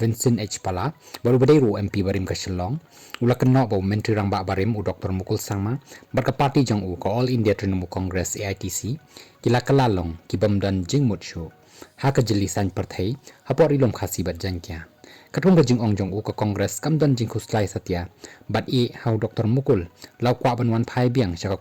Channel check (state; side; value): identical; both; correlation 1.00